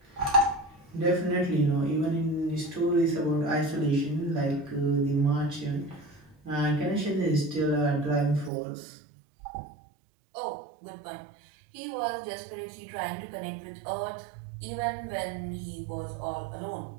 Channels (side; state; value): left; drops out; at 8.5 s